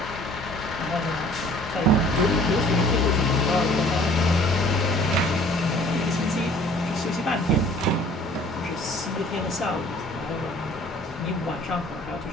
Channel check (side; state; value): both; normal; correlation 0.53